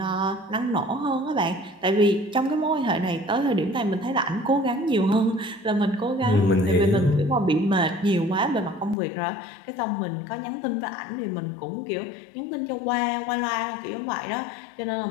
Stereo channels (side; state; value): right; drops out; at 9.0 s